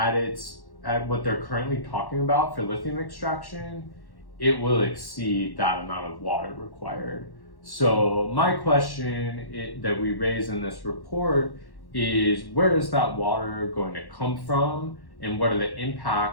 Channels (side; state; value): right; late; 1.1 ms